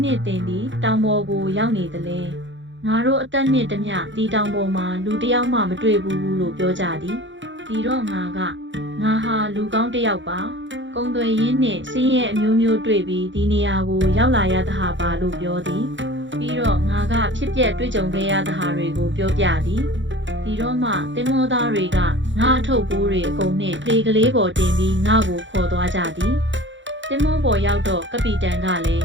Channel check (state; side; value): late; left; 0.54 ms